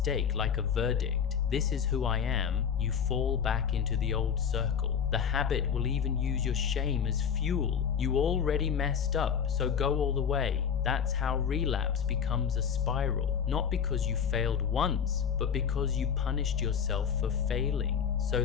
like a verdict, this is who I am, you fall back into the old circle. The habit will even use your shame as fuel. You already messed up, so go all the way. That's how relapse becomes a spiral. Not because you failed once, but because you punished yourself for failing. So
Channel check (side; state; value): right; quieter; 7.4 dB